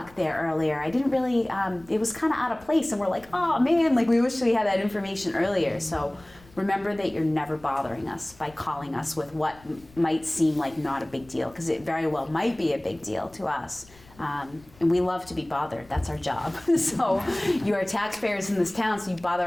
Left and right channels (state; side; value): noise; left; rumble, 25 dB below the sound